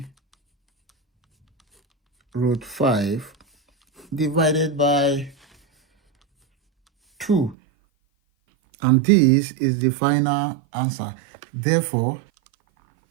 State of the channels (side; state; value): left; drops out; at 7.6 s